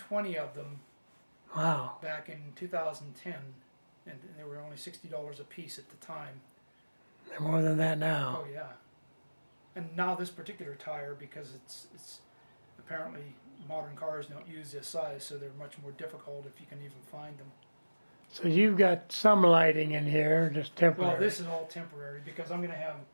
of them Wow. back in 2010, and they were only $60 a piece at the time. They're more than that now. Oh yeah. And now this particular tire, because it's apparently modern cars don't use this size, so they're much more difficult if you can even find them. So you've got some lighting in here, just temporary. Well, this is all temporary because I'm going to have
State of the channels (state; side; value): inverted; both; correlation -1.00